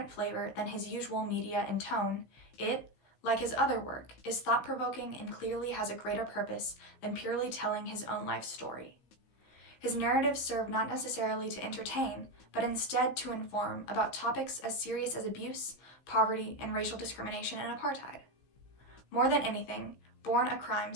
flavor than his usual media and tone, it, like his other work, is thought-provoking and clearly has a greater purpose than purely telling his own life story. His narratives serve not necessarily to entertain, but instead to inform about topics as serious as abuse, poverty, and racial discrimination and apartheid. More than anything, Born a Crime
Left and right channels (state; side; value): late; right; 16 ms